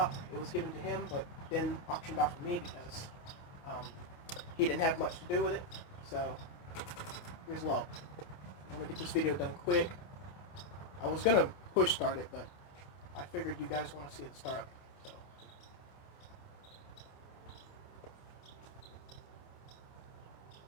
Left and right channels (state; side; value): late; right; 29 ms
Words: It was given to him, but then auctioned off to me because he didn't have much to do with it. So here's low. I'm gonna get this video done quick. I was gonna push start it, but I figured you guys want to see it start.